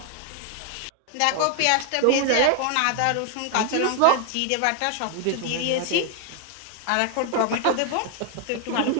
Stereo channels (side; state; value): both; different; correlation 0.00